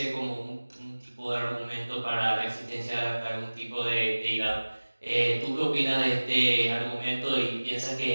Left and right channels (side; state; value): both; inverted; correlation -1.00